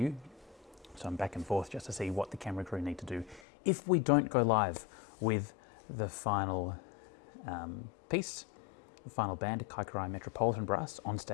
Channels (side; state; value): right; drops out; at 3.4 s